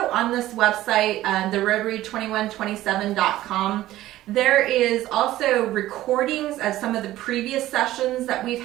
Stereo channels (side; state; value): left; quieter; 15.1 dB